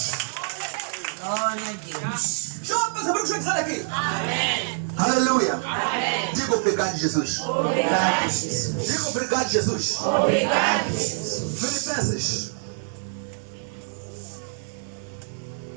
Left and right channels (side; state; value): left; silent; digital silence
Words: Glória a Deus. Deixa eu pensar o que eu dizer aqui. Amém. Aleluia. Amém. Diga obrigado, Jesus. Obrigado, Jesus. Diga obrigado, Jesus. Obrigado, Jesus. Filipenses